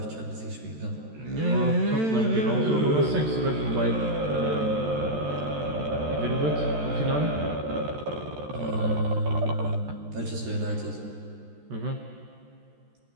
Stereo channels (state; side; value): late; left; 13 ms